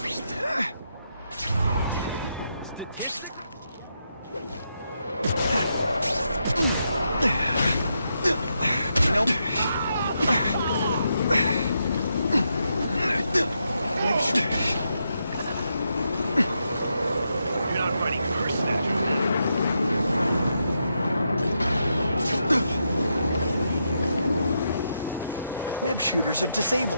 Web shooters are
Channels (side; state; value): both; inverted; correlation -0.83